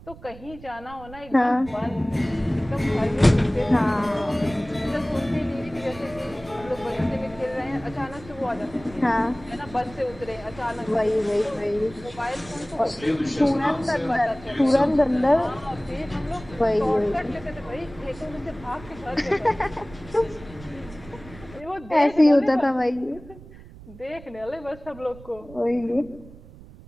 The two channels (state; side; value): noise; right; rumble, 19 dB below the sound